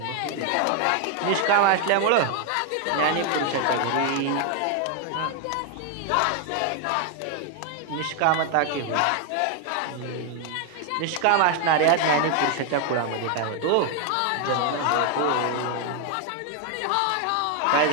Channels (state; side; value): different; both; correlation 0.01